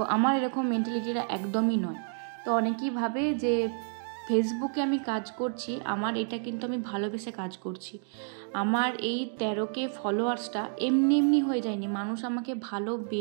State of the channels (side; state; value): left; silent; 57 dB below the other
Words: আমার এরকম মেন্টালিটিটা একদমই নয়। তো অনেকেই ভাবে যে ফেসবুকে আমি কাজ করছি, আমার এটা কিন্তু আমি ভালোবেসে কাজ করছি। আমার এই 13K ফলোয়ার্সটা এমনি এমনি হয়ে যায়নি, মানুষ আমাকে